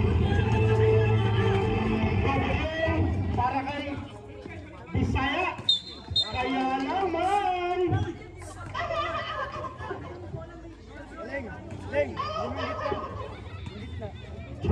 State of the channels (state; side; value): identical; both; correlation 1.00